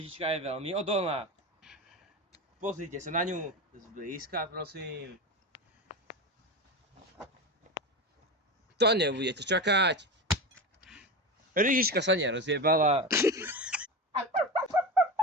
je veľmi odolná. Pozrite sa na ňu zblízka, prosím. To nebudete čakať. Lyžička sa nerozjebala.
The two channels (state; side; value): normal; both; correlation 0.22